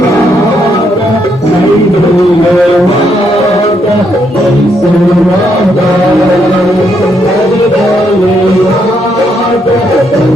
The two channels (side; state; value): both; normal; correlation 0.76